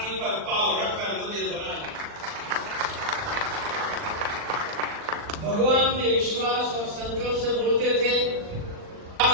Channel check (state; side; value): late; left; 39 ms